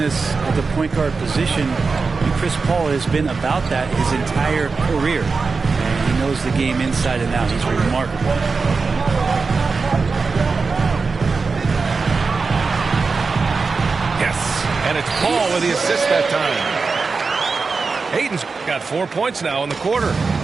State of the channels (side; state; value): left; quieter; 4.5 dB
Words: at the point guard position, and Chris Paul has been about that his entire career. And he knows the game inside and out. He's remarkable. Yes, and it's Paul with the assist that time. Ayton's got 4 points now in the quarter.